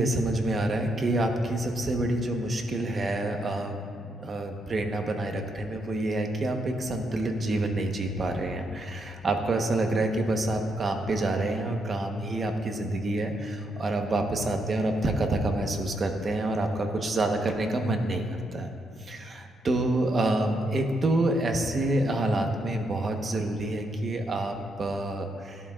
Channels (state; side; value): normal; both; correlation 0.79